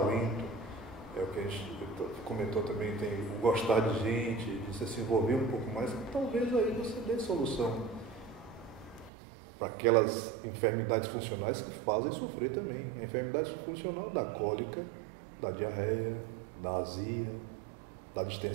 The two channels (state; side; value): drops out; left; at 9.1 s